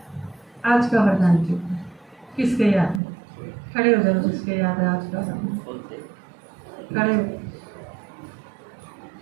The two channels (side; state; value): left; drops out; at 3.0 s